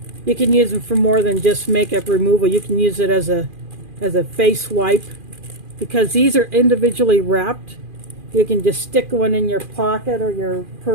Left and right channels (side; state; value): left; late; 2.4 ms